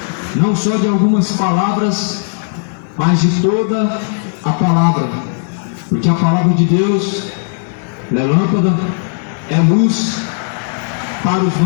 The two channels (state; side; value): silent; right; digital silence